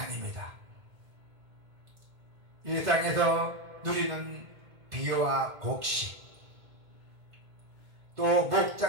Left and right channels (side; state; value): left; late; 1.5 ms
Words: 이 땅에서 누리는 비와 곡식, 또